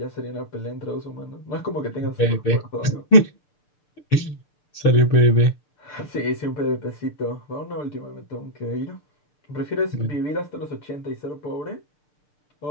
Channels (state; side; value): late; right; 6.7 ms